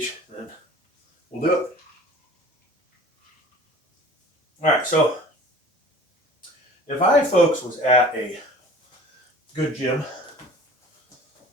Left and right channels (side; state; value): both; normal; correlation 0.45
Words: then we'll do it. All right, so if I, folks, was at a good gym,